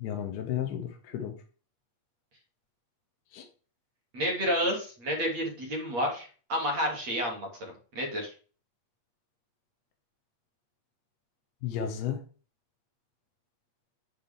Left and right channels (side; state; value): left; late; 8.5 ms